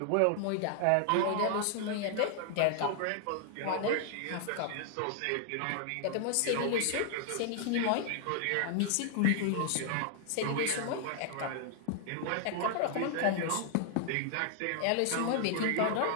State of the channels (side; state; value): both; different; correlation 0.00